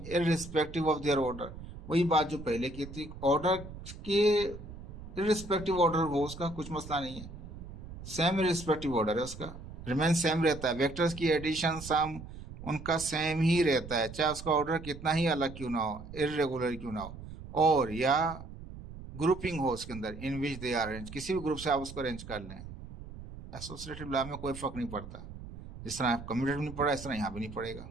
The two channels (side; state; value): right; noise; rumble, 13 dB below the sound